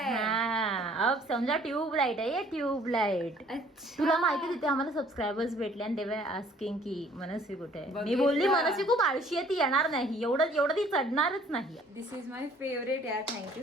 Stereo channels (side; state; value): both; normal; correlation 0.57